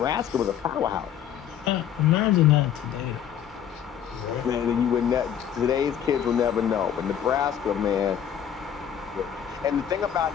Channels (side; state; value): right; quieter; 9.4 dB